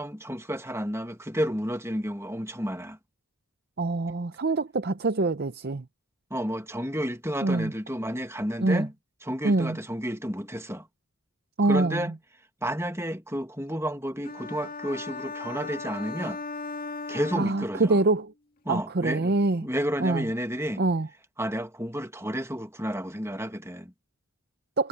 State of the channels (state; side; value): normal; both; correlation 0.53